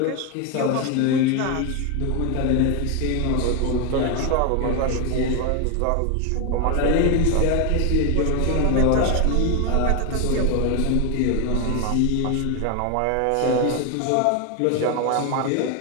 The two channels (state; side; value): different; both; correlation 0.01